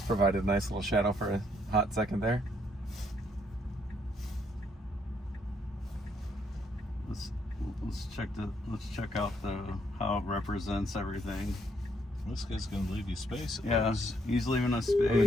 provided a nice little shadow for a hot second there. Let's check out how it represents everything. This guy's gonna leave you space. He's leaving us I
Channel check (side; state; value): both; normal; correlation 0.71